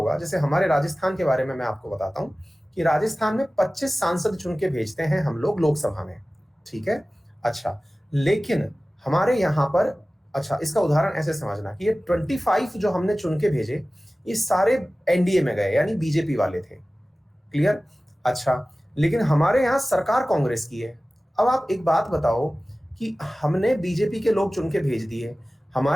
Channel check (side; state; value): both; normal; correlation 0.97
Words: जैसे हमारे राजस्थान के बारे में मैं आपको बताता हूं कि राजस्थान में 25 सांसद चुन के भेजते हैं हम लोग लोकसभा में, ठीक है। अच्छा, लेकिन हमारे यहाँ पर, अच्छा इसका उदाहरण ऐसे समझना कि ये 25 जो हमने चुन के भेजे, ये सारे एनडीए में गए, यानी बीजेपी वाले थे। क्लियर? अच्छा, लेकिन हमारे यहाँ सरकार कांग्रेस की है। अब आप एक बात बताओ कि हमने बीजेपी के लोग चुन के भेज दिए,